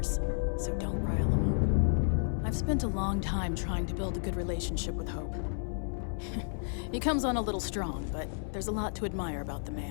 so don't rile him up. I've spent a long time trying to build a good relationship with Hope. He comes on a little strong, but there's a lot to admire about the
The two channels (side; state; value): right; silent; 56 dB below the other